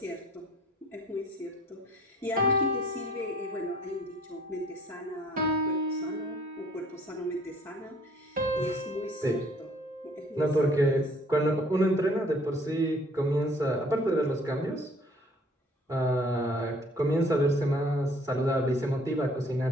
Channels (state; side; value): normal; both; correlation 0.57